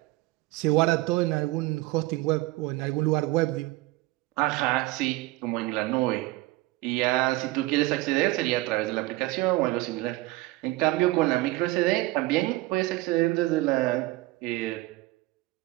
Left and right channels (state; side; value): quieter; left; 19.4 dB